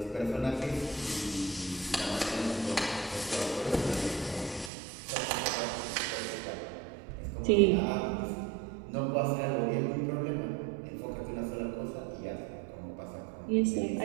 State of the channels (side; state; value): left; drops out; at 4.7 s